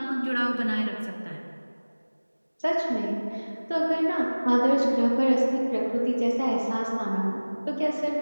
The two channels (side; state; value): both; inverted; correlation -1.00